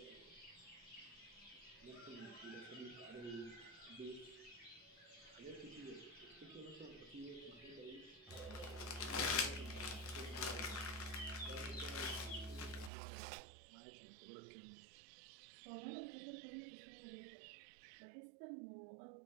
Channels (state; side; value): drops out; left; at 12.9 s